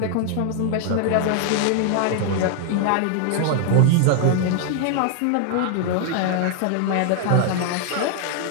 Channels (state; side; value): different; both; correlation 0.00